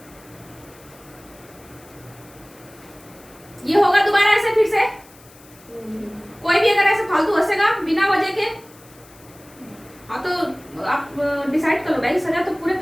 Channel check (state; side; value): noise; left; hiss, 25 dB below the sound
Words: ये होगा दोबारा ऐसे फिर से? कोई भी अगर ऐसे फालतू हंसेगा बिना वजह के, हाँ तो आप डिसाइड कर लो भाई, सजा तो पूरे